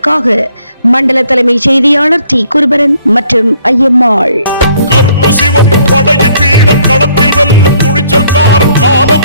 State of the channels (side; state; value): both; inverted; correlation -0.63